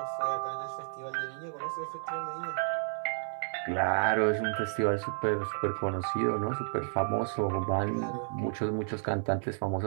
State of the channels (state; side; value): silent; left; 57 dB below the other